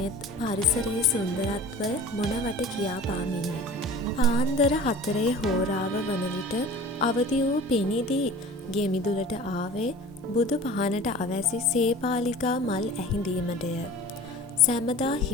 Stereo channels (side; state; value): both; normal; correlation 0.41